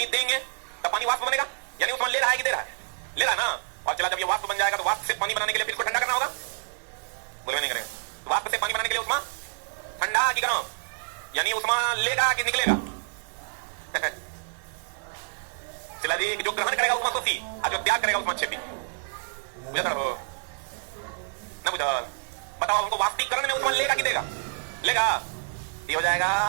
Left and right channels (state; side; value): silent; left; digital silence